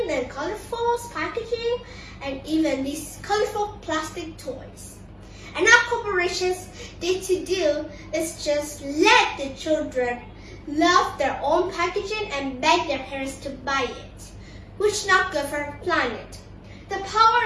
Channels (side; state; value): both; identical; correlation 1.00